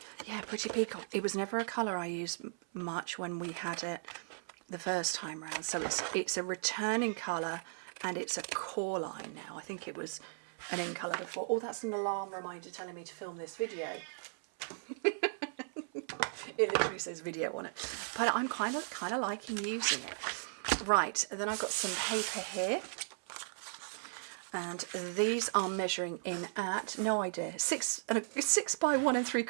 Yeah, Pretty Peacock. It was never a colour I used much when we had it the first time round, so it's a returning colour and it's a core line now. I think it was an in colour before. Oh, that's an alarm reminder telling me to film this video. It literally says video on it, but I'm kind of liking using it. Right, and then I've got some paper here, and these are measuring in at, no idea, 6 by 1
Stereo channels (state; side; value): silent; left; 53 dB below the other